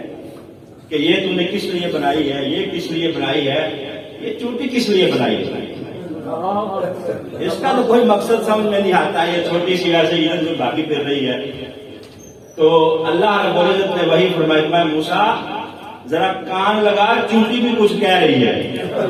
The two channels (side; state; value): both; identical; correlation 1.00